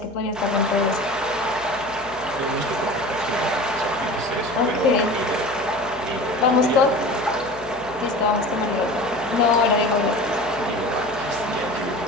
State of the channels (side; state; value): left; noise; hum, 21 dB below the sound